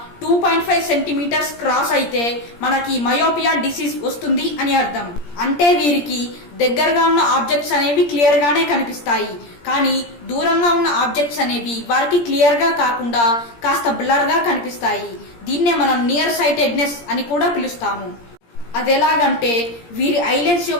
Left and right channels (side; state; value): right; late; 17 ms